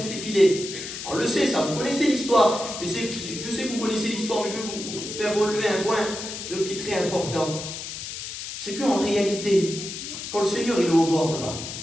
les filets. On le sait, ça, vous connaissez l'histoire. Mais je sais que vous connaissez l'histoire, mais je vais vous faire relever un point qui est très important. C'est qu'en réalité, quand le Seigneur il est au bord là-bas,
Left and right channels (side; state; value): left; noise; hiss, 8 dB below the sound